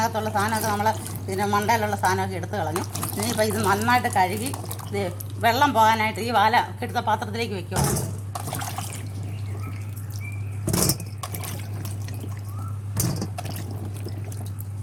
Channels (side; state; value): both; identical; correlation 1.00